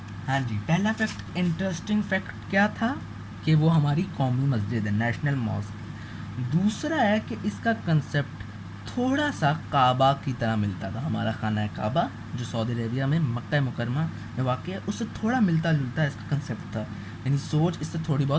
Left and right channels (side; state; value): both; identical; correlation 1.00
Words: ہاں جی، پہلا فیکٹ، انٹرسٹنگ فیکٹ کیا تھا کہ وہ ہماری قومی مسجد ہے، نیشنل ماسک. دوسرا ہے کہ اس کا کنسیپٹ تھوڑا سا کعبہ کی طرح ملتا تھا. ہمارا خانہ کعبہ جو سعودی عربیہ میں مکہ مکرمہ میں واقع ہے، اس سے تھوڑا ملتا جلتا اس کا کنسیپٹ تھا. یعنی سوچ اس سے تھوڑی